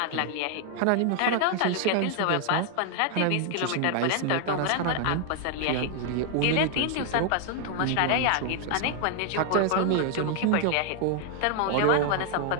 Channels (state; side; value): different; both; correlation 0.00